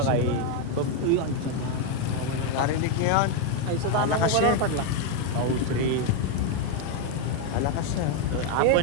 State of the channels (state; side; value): different; both; correlation 0.01